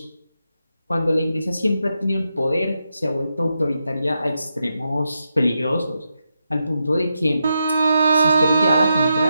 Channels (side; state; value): both; inverted; correlation -0.85